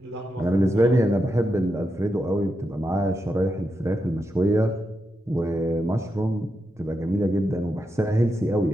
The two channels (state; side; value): normal; both; correlation 0.86